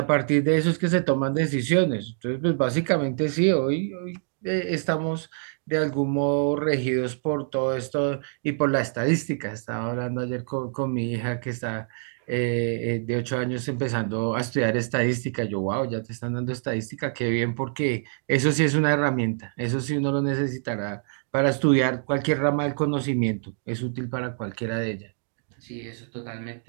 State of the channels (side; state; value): left; silent; digital silence